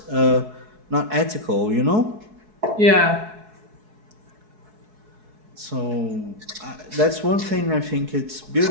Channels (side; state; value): left; late; 4.7 ms